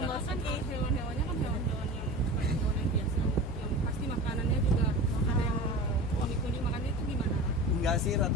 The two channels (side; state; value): both; normal; correlation 0.32